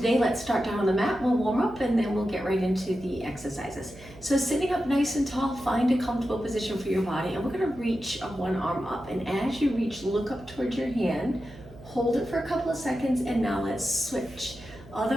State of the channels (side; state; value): right; noise; hum, 20 dB below the sound